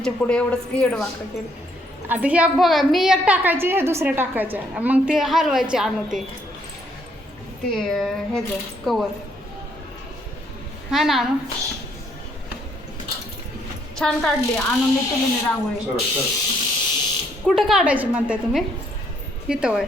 पुढे एवढंच येडवाकडं केलं आता ह्या बघा मी एक टाकायचे हे दुसऱ्या टाकायच्या मग ते हलवायचे आणू ते ह्याचं कवर हा ना आणू छान काढली आणून मी तुला रांगोळी कुठं काढायची म्हणताय तुम्ही इथं होय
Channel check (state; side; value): normal; both; correlation 0.69